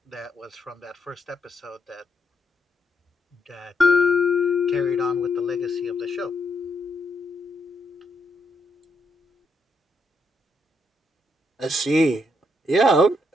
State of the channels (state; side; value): normal; both; correlation 0.77